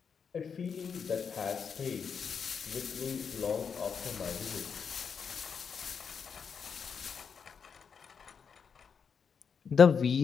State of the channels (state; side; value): quieter; right; 6.4 dB